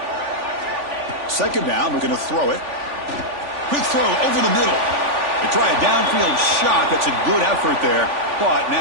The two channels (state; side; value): late; left; 3.5 ms